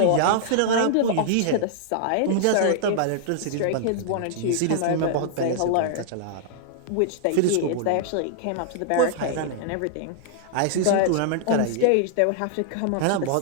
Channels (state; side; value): different; both; correlation -0.01